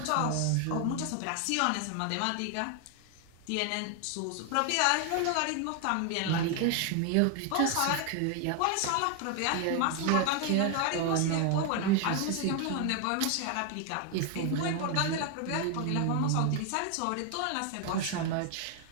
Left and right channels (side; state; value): both; different; correlation 0.00